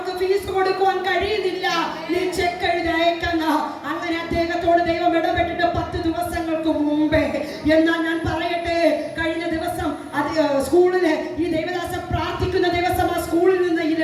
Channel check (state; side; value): identical; both; correlation 1.00